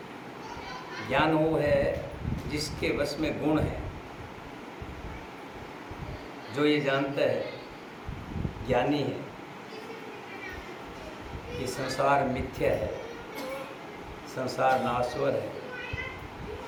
ज्ञान वो है जिसके वश में गुण है, जो ये जानता है, ज्ञानी है, कि संसार मिथ्या है, संसार नाशवर है,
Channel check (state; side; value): identical; both; correlation 1.00